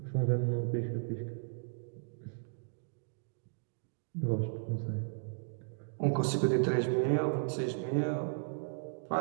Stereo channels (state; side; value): silent; left; digital silence